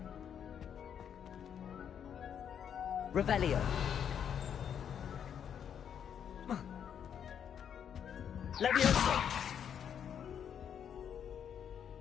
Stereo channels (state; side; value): quieter; right; 8.4 dB